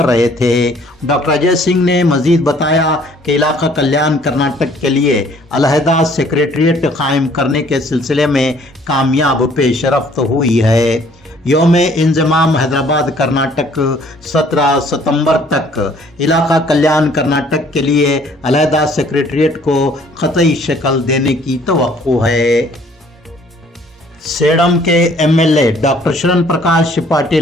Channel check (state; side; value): normal; both; correlation 0.58